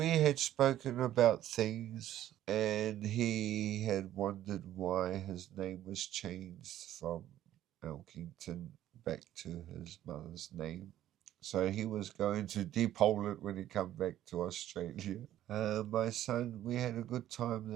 had spoken about things, and he had wondered why his name was changed from Elkington back to his mother's name. So he was going to depole it when he come back to Australia. My son, we had a good time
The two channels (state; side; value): quieter; left; 12.6 dB